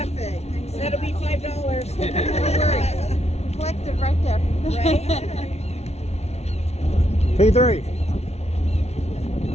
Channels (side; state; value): right; late; 0.31 ms